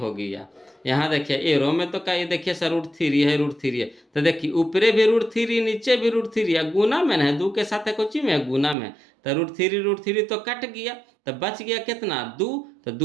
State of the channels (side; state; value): left; drops out; at 8.8 s